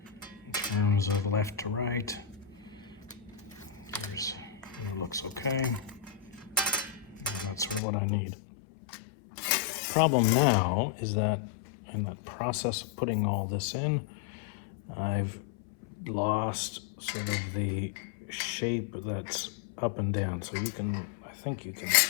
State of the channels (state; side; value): drops out; right; at 7.8 s